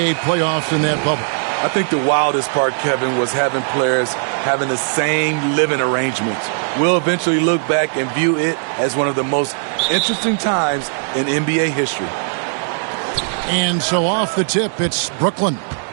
playoffs in that bubble? I think the wildest part, Kevin, was having players having the same living arrangements. We'll eventually look back and view it as one of the most interesting times in NBA history. And so off the tip, it's Brooklyn.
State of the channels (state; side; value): silent; left; 67 dB below the other